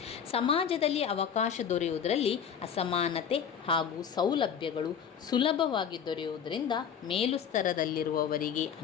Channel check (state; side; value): quieter; right; 7.8 dB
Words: ಸಮಾಜದಲ್ಲಿ ಅವಕಾಶ ದೊರೆಯುವುದರಲ್ಲಿ ಅಸಮಾನತೆ ಹಾಗೂ ಸೌಲಭ್ಯಗಳು ಸುಲಭವಾಗಿ ದೊರೆಯುವುದರಿಂದ ಮೇಲು ಸ್ತರದಲ್ಲಿರುವವರಿಗೆ